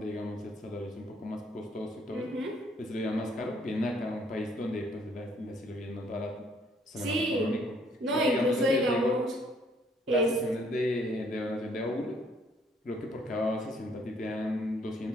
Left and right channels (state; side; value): normal; both; correlation 0.64